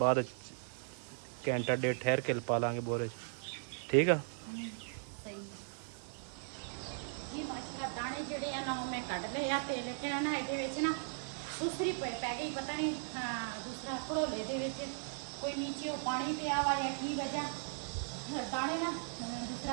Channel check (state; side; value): silent; left; 53 dB below the other